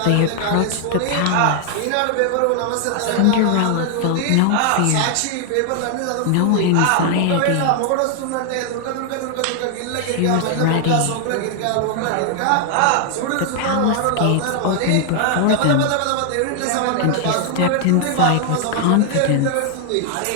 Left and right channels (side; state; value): both; different; correlation 0.00